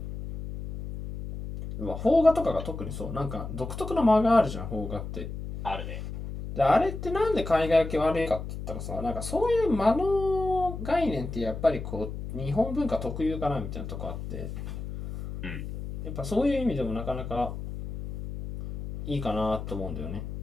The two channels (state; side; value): noise; left; hum, 7 dB below the sound